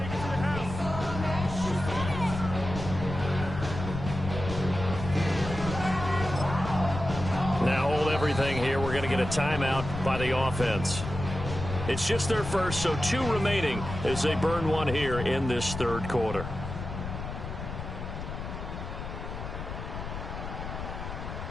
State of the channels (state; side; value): noise; left; rumble, 7 dB below the sound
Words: Now hold everything here. We're going to get a timeout by the offense. It's just their first, so 2 remaining as they burn one here in this third quarter.